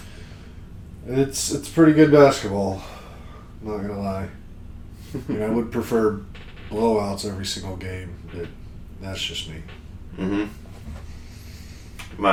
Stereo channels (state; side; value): identical; both; correlation 1.00